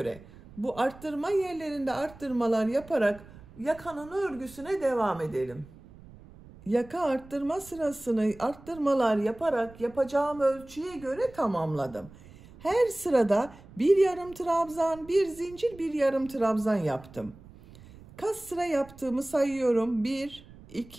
bu arttırma yerlerinde arttırmalar yaparak yakanın örgüsüne devam edelim. Yaka arttırma sırasını arttırmalar yaparak yapacağım ölçüye göre tamamladım. Her sırada bir yarım trabzan, bir zincir, bir yarım trabzan yaptım. Kaç sıra yaptığımı sayıyorum. 1,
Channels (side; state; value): right; noise; rumble, 21 dB below the sound